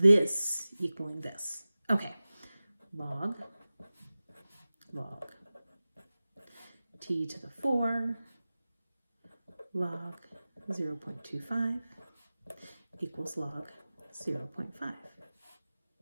equaling this. Okay, log t to the 4 log 0.25 equals log 0.5.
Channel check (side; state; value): both; inverted; correlation -0.97